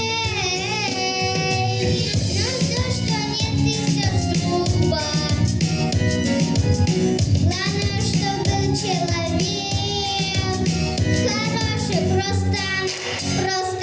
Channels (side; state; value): both; identical; correlation 1.00